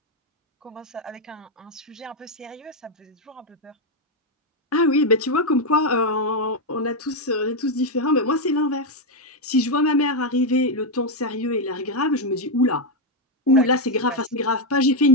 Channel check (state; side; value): normal; both; correlation 0.03